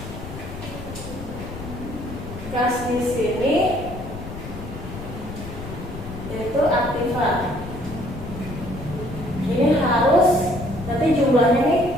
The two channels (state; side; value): noise; left; rumble, 10 dB below the sound